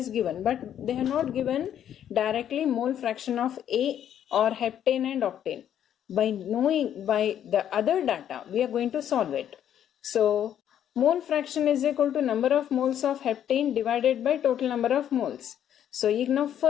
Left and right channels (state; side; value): quieter; right; 10.1 dB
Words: given, but they have not given directly mole fraction of A or heptane and octane. By knowing by the other data, we are going to solve it. So mole fraction is equal to number of moles of heptane divided by total number of moles. So ಈಗ ನಾವು